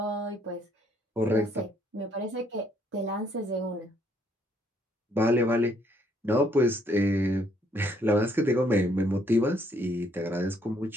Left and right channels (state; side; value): normal; both; correlation 0.68